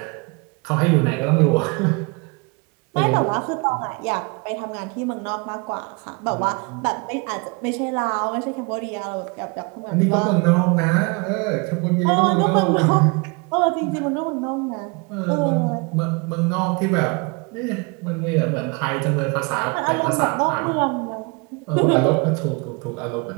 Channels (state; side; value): quieter; left; 29.9 dB